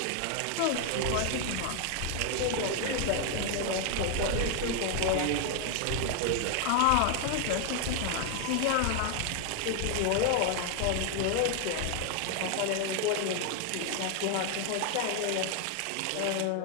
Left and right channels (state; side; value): different; both; correlation 0.00